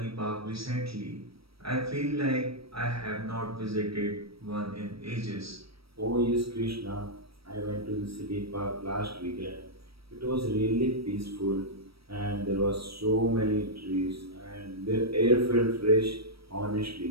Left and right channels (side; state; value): left; late; 0.76 ms